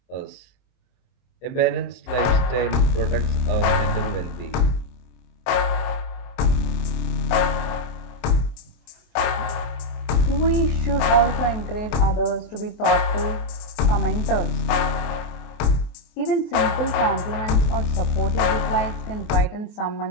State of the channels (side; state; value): right; late; 24 ms